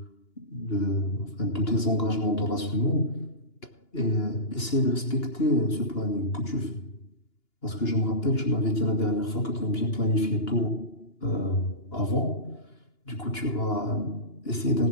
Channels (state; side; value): late; right; 2.9 ms